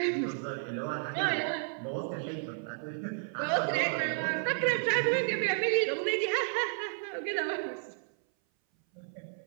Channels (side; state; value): left; silent; 56 dB below the other